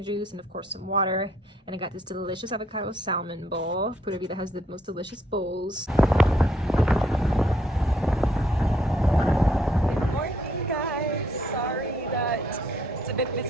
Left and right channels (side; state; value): both; normal; correlation 0.69